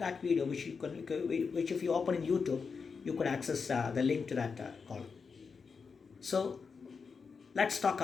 video, which if you open in YouTube, you could access the link to that column. So let's talk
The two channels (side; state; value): right; quieter; 5.4 dB